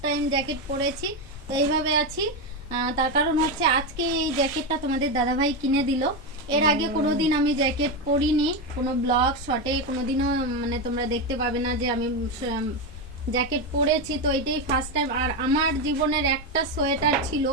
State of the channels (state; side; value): normal; both; correlation 0.11